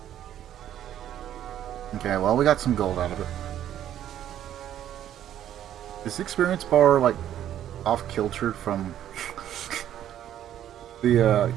Okay, well, we got some gold out of it. Is the experience bar, like, off-kiltered from the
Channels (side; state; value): left; quieter; 11.1 dB